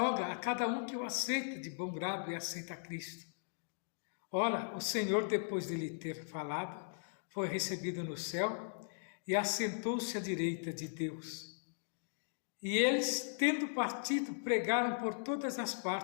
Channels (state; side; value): silent; right; digital silence